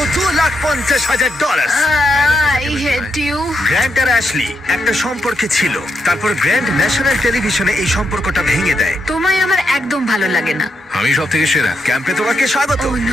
$2,50,000। I hate you. গ্র্যান্ট আর অ্যাশলি একটা সম্পর্কে ছিল, তারপর গ্র্যান্ট ন্যাশনাল টেলিভিশনে এই সম্পর্কটা ভেঙে দেয়। তোমায় আমার একদম ভালো লাগে না। আমি সব থেকে সেরা। ক্যাম্পে তোমাকে স্বাগত। ও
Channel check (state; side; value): normal; both; correlation 0.81